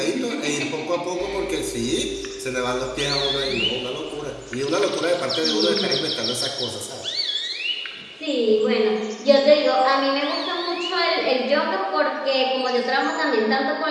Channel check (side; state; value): both; identical; correlation 1.00